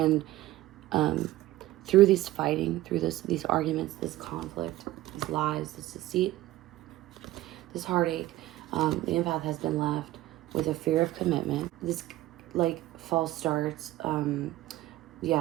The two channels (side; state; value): left; quieter; 16.0 dB